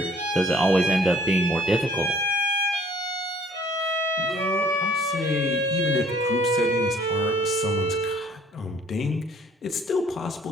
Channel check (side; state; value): both; normal; correlation 0.57